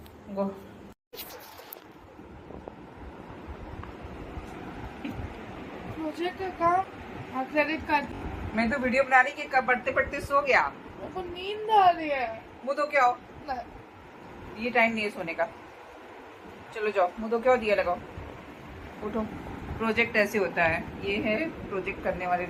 गो। मुझे क्या काम? Credit card. मैं तो वीडियो बना रही कि कब पढ़ते पढ़ते सो गया। मेरे को नींद आ रही है। मुँह तो क्या हो, ये टाइम नहीं है सोने का। चलो जाओ, मुँह तो क्या दिया लगाओ, उठो। प्रोजेक्ट ऐसे होता है, ये है प्रोजेक्ट करने वाले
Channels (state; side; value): identical; both; correlation 1.00